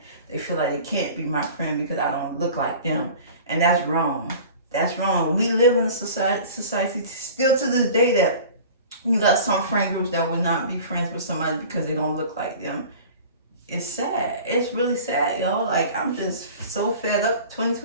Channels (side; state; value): both; inverted; correlation -0.41